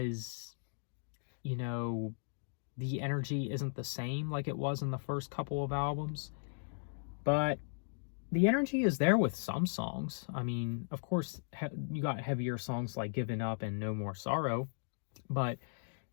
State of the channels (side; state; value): right; silent; digital silence